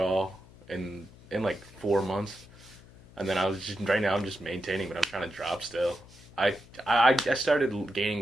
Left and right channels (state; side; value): noise; left; hum, 23 dB below the sound